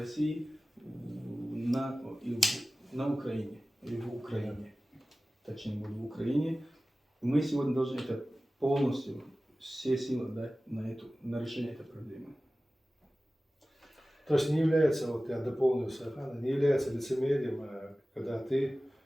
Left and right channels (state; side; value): normal; both; correlation 0.97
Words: на Украине, или в Украине. Точнее, будет в Украине. Мы сегодня должны это полностью, все силы дать на решение этой проблемы. То есть не является, вот я дополню Сахана, не является лицемерием, когда ты